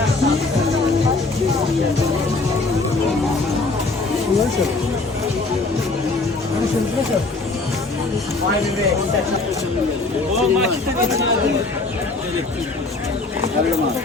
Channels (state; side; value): quieter; right; 3.5 dB